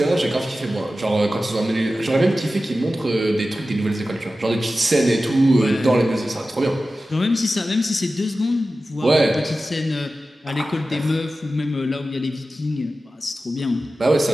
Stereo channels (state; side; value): normal; both; correlation 0.94